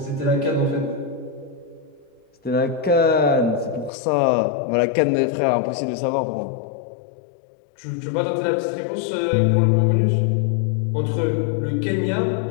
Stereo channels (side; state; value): right; drops out; at 3.9 s